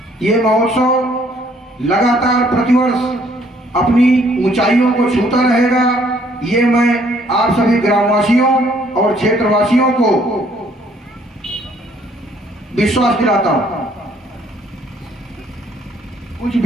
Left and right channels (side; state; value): both; normal; correlation 0.64